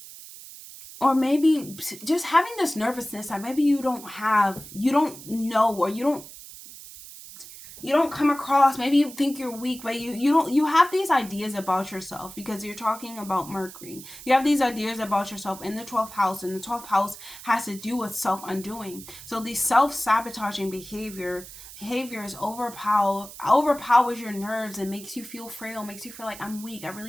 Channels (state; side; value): noise; right; hiss, 15 dB below the sound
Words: or maybe just having this nervousness that maybe you don't know, or you don't come across. Maybe you think you're weak, but you have these ideas about yourself, because you're talking about Mercury. You have these ideas about yourself in the 12th house, and the 12th house has to do with self-undoing. So the self-sabotaging behaviors overpowers your nerves and makes you feel frail, makes you feel like, I'm weak, I